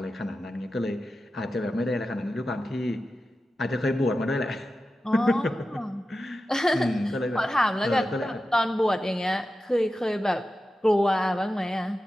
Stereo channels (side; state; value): both; normal; correlation 0.92